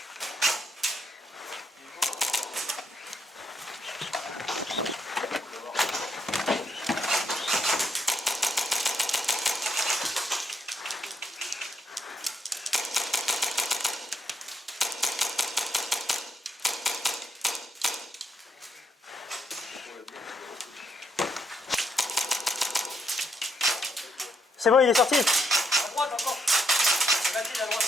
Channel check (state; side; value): normal; both; correlation 0.74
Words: C'est bon, il est sorti. À droite encore. Vas-y, à droite.